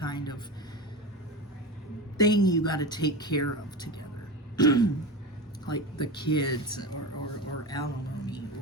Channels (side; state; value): both; normal; correlation 0.25